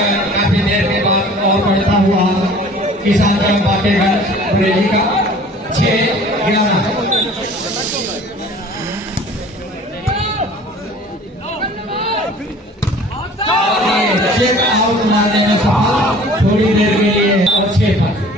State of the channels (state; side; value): normal; both; correlation 0.48